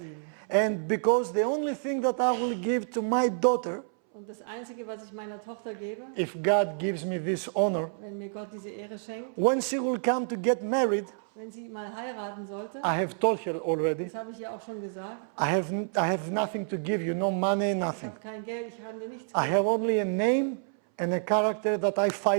And because the only thing that I will give to my daughter, Und das Einzige, was ich meiner Tochter gebe, if God gives me this honor, wenn mir Gott diese Ehre schenkt, when she will come to get married, wenn sie mal heiraten sollte, I have told her already, das habe ich ihr auch schon gesagt, I have nothing to give you, no money, ich nothing. habe kein Geld, ich kann dir nichts I geben. have only a name and a character that I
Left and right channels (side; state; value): left; silent; 59 dB below the other